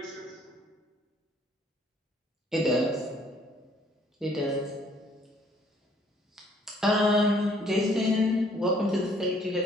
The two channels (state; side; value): normal; both; correlation 0.62